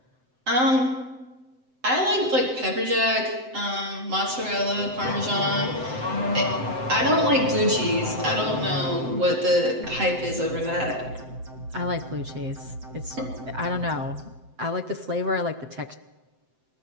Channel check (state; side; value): late; left; 7.8 ms